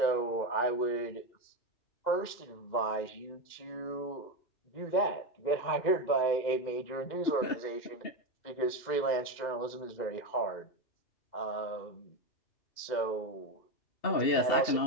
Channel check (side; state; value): right; late; 2.1 ms